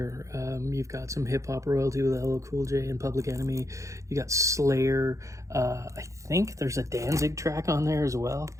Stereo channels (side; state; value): left; late; 0.15 ms